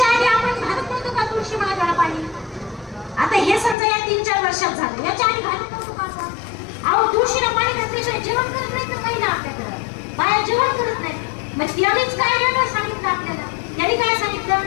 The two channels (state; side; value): drops out; right; at 3.8 s